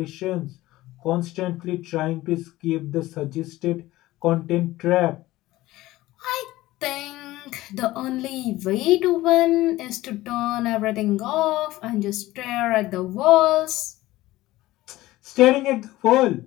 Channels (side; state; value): right; quieter; 17.3 dB